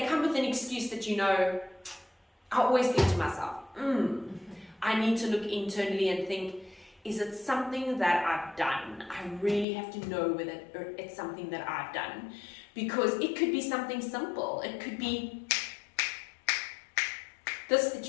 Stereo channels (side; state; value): right; drops out; at 9.7 s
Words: come with an excuse that, you know, I always think to myself, I need to look internally and think, is it something that I've done? I really have to know whether it's something that I've done. Because it could be something simple. It could be this